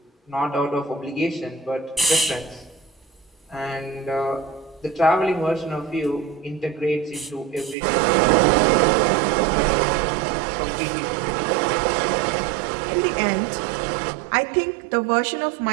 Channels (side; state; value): left; drops out; at 7.8 s